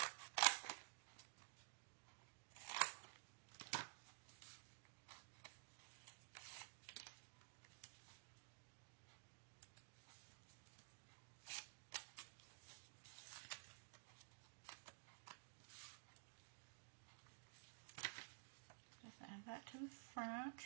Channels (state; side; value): silent; left; digital silence